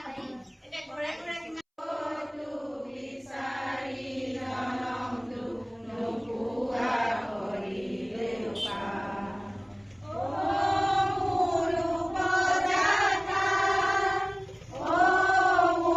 হয় এতিয়া ঘৰে ঘৰে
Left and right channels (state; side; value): identical; both; correlation 1.00